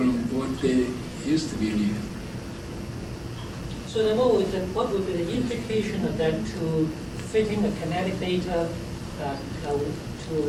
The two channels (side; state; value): both; identical; correlation 1.00